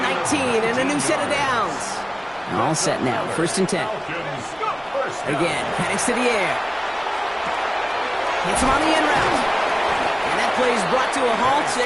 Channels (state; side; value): identical; both; correlation 1.00